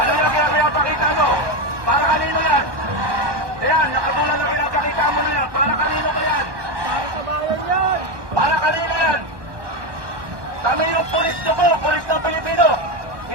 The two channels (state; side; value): late; left; 1.2 ms